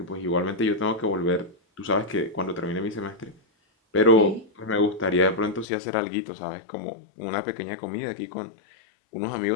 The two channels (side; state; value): right; drops out; at 5.7 s